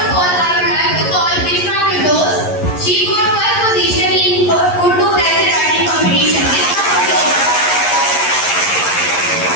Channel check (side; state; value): right; late; 11 ms